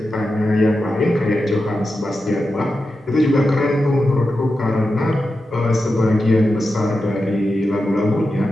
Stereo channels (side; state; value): both; normal; correlation 0.90